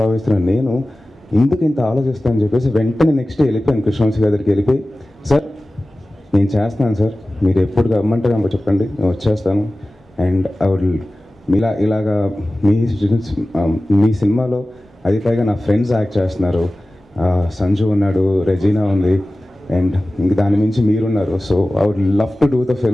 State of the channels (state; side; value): normal; both; correlation 0.96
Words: భావిస్తున్నాను. నేను ఎందుకు ఇంత ఆలోచిస్తానని చెప్పేసి వెంటనే నెక్స్ట్ వెళ్ళిపోయాను కృష్ణవంశీ గారి దగ్గరికి. వెళ్ళిపోయి, సార్ నేను చేస్తున్నాను సార్, మీరు ఎప్పుడు రమ్మంటే నాకు చెప్పండి, నేను వచ్చేస్తాను. అండ్ ఐ వుడ్ ఇలాగా మీ సినిమాలో అది పైగా నా ఫ్రెండ్స్ యాక్ట్ చేస్తున్నారు, సంజు ఉన్నాడు, రెజీనా ఉంది, అండ్ ఇంక దాని మించి మీరున్నారు. So I would love to do the